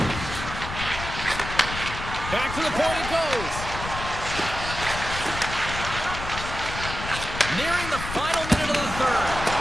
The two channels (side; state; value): left; noise; rumble, 7 dB below the sound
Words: Back to the point it goes. Nearing the final minute of the third.